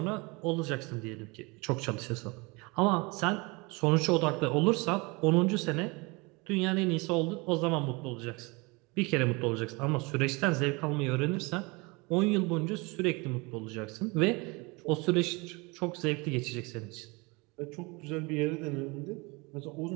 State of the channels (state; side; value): quieter; left; 26.9 dB